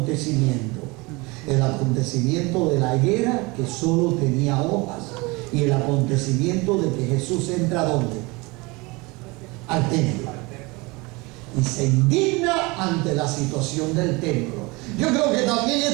El acontecimiento de la higuera que solo tenía hojas y el acontecimiento de que Jesús entra ¿a dónde? Al templo. Y se indigna ante la situación del templo. Yo creo que también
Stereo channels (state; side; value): quieter; left; 25.2 dB